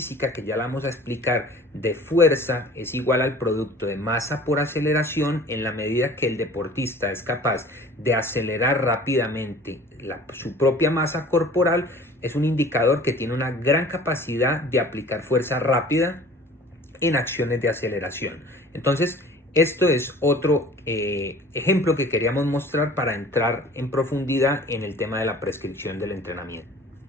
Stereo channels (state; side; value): normal; both; correlation 0.46